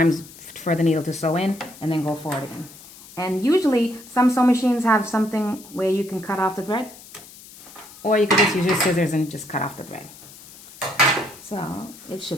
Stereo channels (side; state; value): left; noise; hiss, 19 dB below the sound